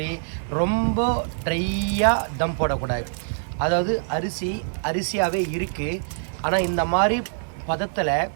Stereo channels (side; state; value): left; silent; 62 dB below the other